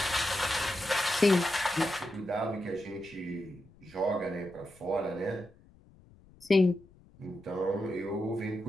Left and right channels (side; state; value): left; noise; rumble, 26 dB below the sound